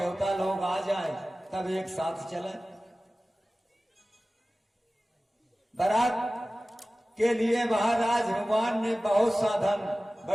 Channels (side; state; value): both; normal; correlation 0.97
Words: लोग आ जाएं तब एक साथ चले। बारात के लिए महाराज हनुमान ने बहुत साधन,